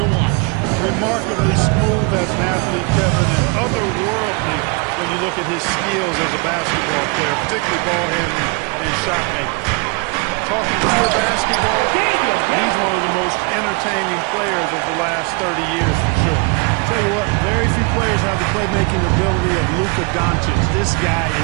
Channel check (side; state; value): left; quieter; 30.6 dB